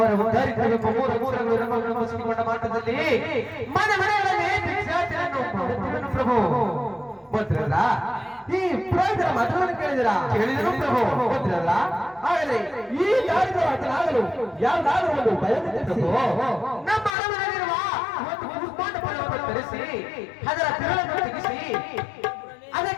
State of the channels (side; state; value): right; drops out; at 17.1 s